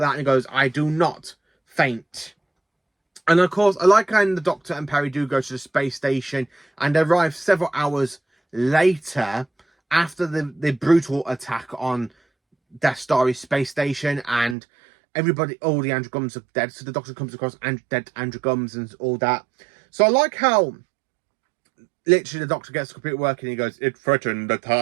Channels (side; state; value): left; drops out; at 14.6 s